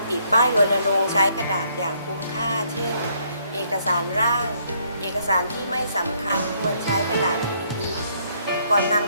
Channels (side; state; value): both; inverted; correlation -0.69